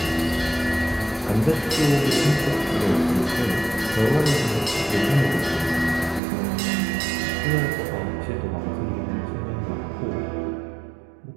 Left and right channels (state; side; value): drops out; left; at 6.2 s